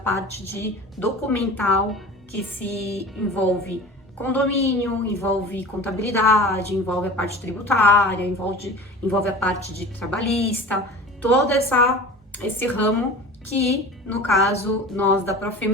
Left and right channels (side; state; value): both; normal; correlation 0.37